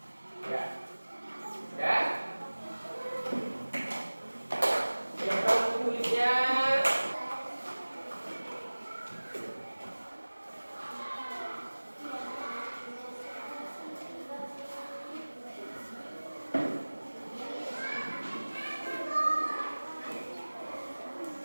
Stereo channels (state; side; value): inverted; both; correlation -1.00